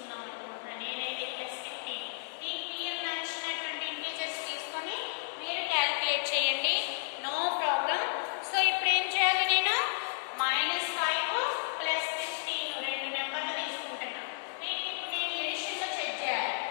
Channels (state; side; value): silent; right; digital silence